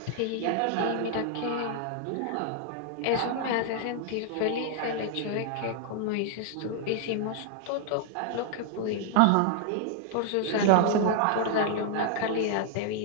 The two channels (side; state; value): both; different; correlation 0.00